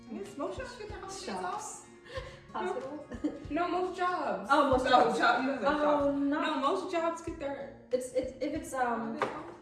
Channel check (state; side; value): identical; both; correlation 1.00